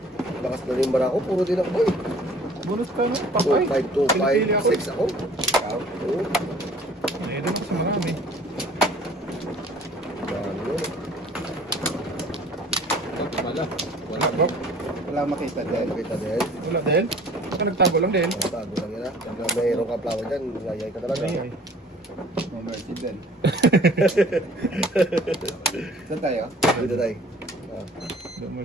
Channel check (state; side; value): normal; both; correlation 0.51